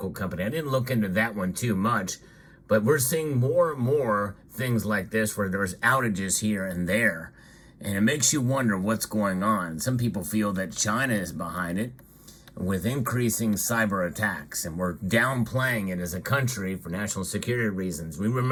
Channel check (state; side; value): identical; both; correlation 1.00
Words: company. I didn't look into that one too much, but we're seeing more and more things like this where there's outages here and there. And it makes you wonder what's going on. Some people feel that China is behind it with increasing cyber attacks, and we're downplaying it as a country for national security reasons. We